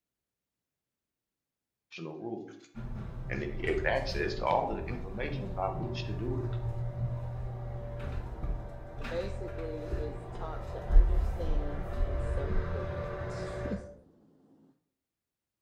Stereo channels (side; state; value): both; identical; correlation 1.00